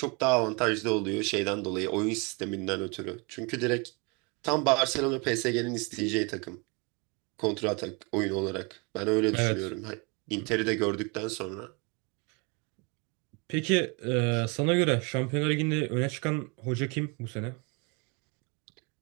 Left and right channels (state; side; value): quieter; left; 30.5 dB